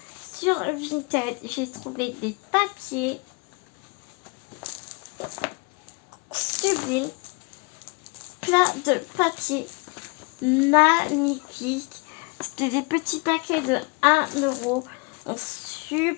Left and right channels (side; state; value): right; quieter; 31.1 dB